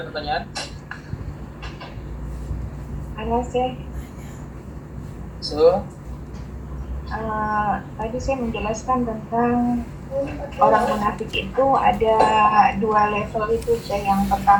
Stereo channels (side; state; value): both; identical; correlation 1.00